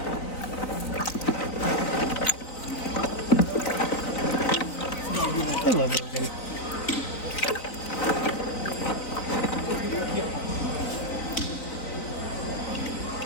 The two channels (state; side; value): late; right; 3.9 ms